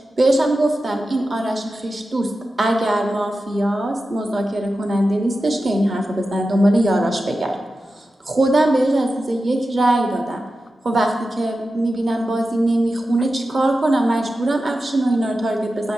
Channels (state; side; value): normal; both; correlation 0.92